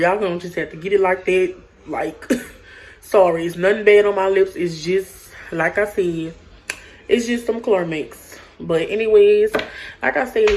Y'all gonna just have to get it like that. Like, sorry. It's nothing bad on my lips. It's just, like I said, it's just some Climax. But anyways, like I said,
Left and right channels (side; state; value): both; identical; correlation 1.00